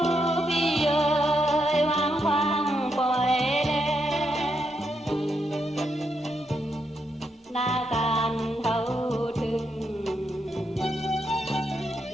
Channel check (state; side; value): normal; both; correlation 0.81